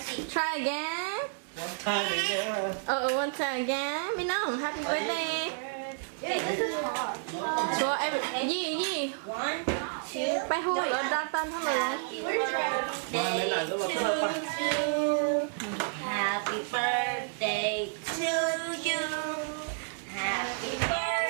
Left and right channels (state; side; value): silent; left; 57 dB below the other